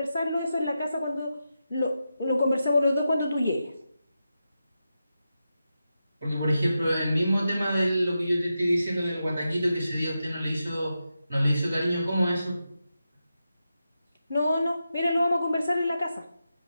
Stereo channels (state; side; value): inverted; both; correlation -0.89